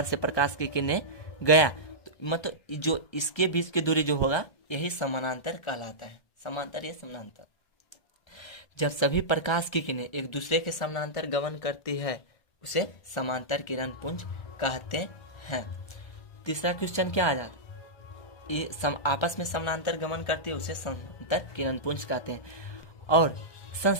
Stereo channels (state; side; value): late; right; 1.3 ms